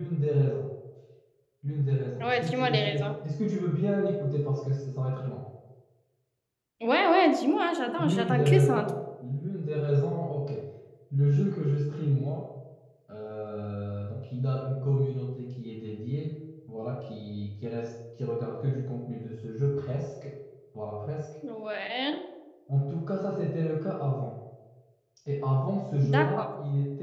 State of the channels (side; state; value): both; identical; correlation 1.00